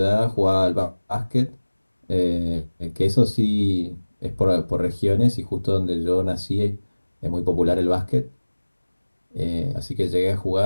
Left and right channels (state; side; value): inverted; both; correlation -1.00